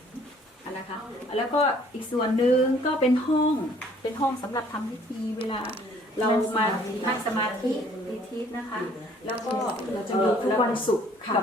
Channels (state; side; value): normal; both; correlation 0.58